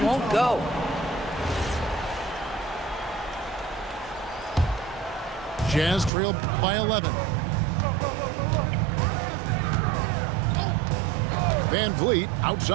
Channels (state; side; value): drops out; left; at 6.1 s